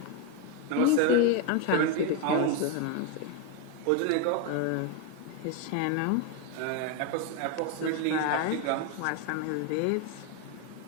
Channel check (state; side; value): different; both; correlation 0.02